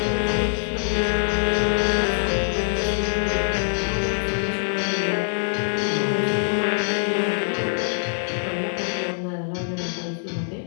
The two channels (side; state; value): right; silent; digital silence